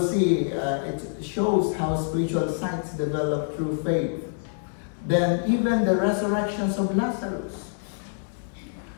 see, it shows how spiritual sights develop through faith. Then even the resurrections of Lazarus.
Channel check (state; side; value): silent; right; digital silence